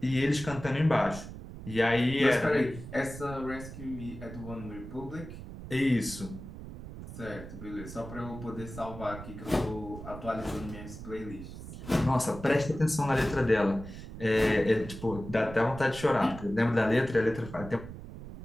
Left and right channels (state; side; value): noise; right; rumble, 12 dB below the sound